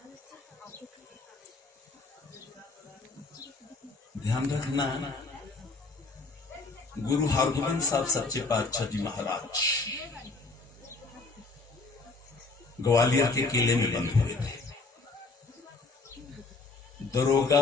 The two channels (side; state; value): right; quieter; 3.7 dB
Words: ध्यान रखना, गुरु हरगोबिंद साहब सच्चे पातशाह जी महाराज ग्वालियर के किले में बंद हुए थे।